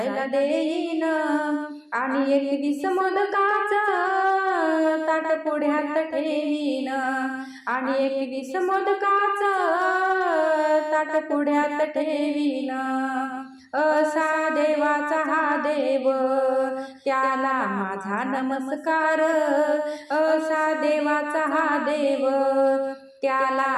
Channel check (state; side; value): identical; both; correlation 1.00